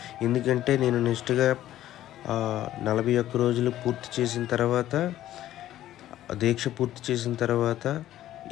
ఎందుకంటే నేను నెక్స్ట్గా 41 రోజులు పూర్తి చేసిన తర్వాత, దీక్ష పూర్తి చేసిన తర్వాత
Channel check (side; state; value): right; quieter; 13.2 dB